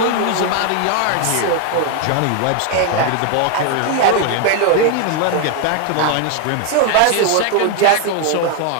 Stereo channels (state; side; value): different; both; correlation 0.01